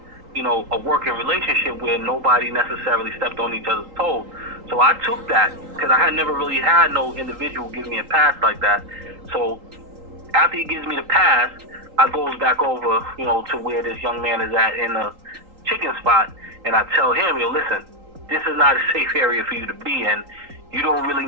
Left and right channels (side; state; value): left; late; 3.8 ms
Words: a working relationship where nobody necessarily stepped on each other's toes. So I took that because I had never really had no individual give me a pass like that. So after he gives me the pass, I goes back over, to where this young man is at in the chicken spot, and I tell him, listen, this is not a safe area for you to be in. You don't really